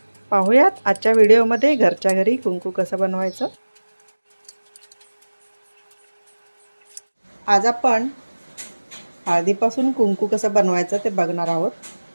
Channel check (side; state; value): both; inverted; correlation -1.00